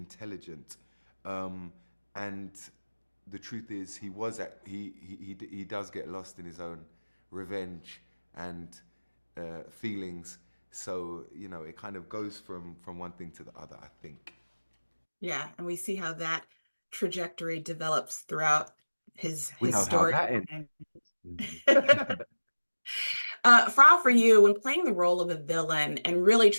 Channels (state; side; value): inverted; both; correlation -1.00